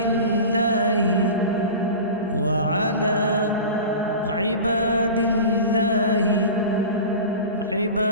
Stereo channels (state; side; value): inverted; both; correlation -0.33